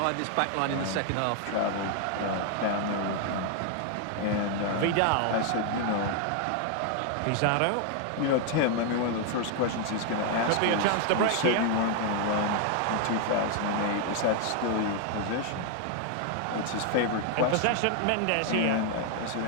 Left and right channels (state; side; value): different; both; correlation 0.00